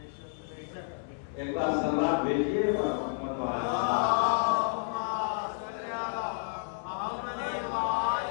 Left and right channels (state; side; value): silent; right; 57 dB below the other